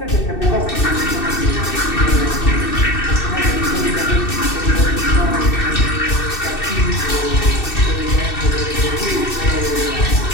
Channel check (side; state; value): right; late; 2.6 ms